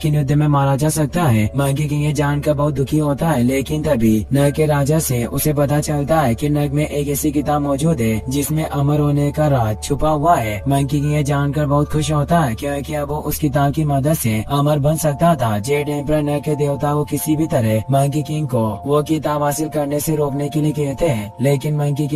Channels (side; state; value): both; identical; correlation 1.00